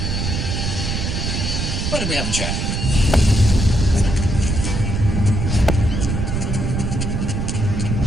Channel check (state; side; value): noise; right; rumble, 1 dB below the sound